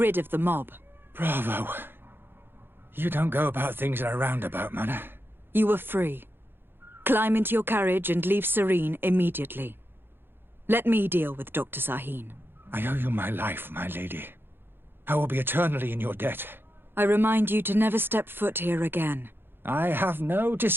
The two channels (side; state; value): left; late; 0.10 ms